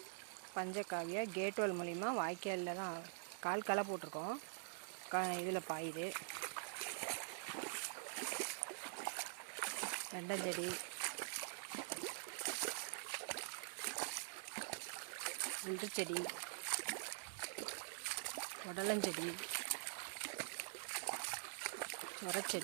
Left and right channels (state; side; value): silent; left; digital silence